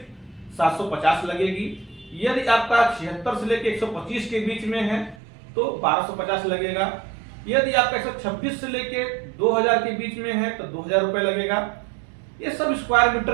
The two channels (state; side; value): drops out; left; at 5.2 s